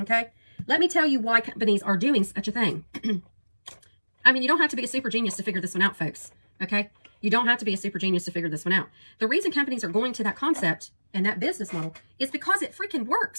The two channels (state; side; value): inverted; both; correlation -1.00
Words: Let me tell you why companies are doing such a thing. I mean, you don't have to be a super genius to figure this one out, folks. Okay? You don't have to be a super genius to figure this one out. The reason companies are going to that concept and that business model is because it freaking